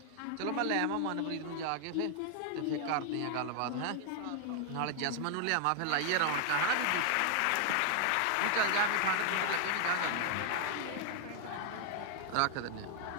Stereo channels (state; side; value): different; both; correlation 0.00